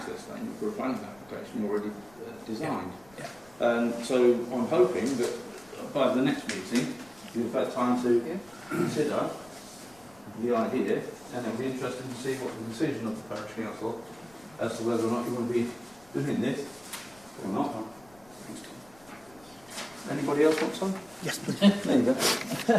statement for a planning application already designed. Yeah. So I'm hoping that by the next meeting you've had time to consider the idea, and it'll be interesting to see what the decision of the parish council as to whether or not you want to be doing this or not. Anybody else want some? Yes, please. There you go.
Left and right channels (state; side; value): noise; left; rumble, 27 dB below the sound